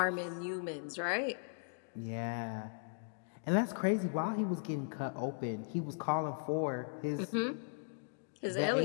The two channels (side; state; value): right; silent; digital silence